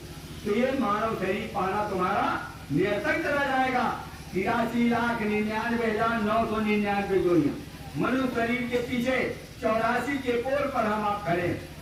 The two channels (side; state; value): both; identical; correlation 1.00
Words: तो ये मानव शरीर पाना तुम्हारा निरर्थक चला जाएगा। 83,99,999 जोड़ियां मनुष्य शरीर के पीछे 84 के पोल पर हम आप खड़े।